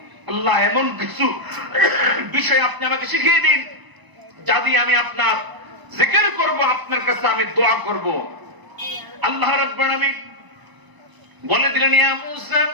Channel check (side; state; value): left; late; 1.0 ms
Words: আল্লাহ এমন কিছু বিষয় আপনি আমাকে শিখিয়ে দিন যা দিয়ে আমি আপনার জিকির করব, আপনার কাছে আমি দোয়া করব। আল্লাহ রাব্বুল আলামিন বলে দিলেন ইয়া মুসা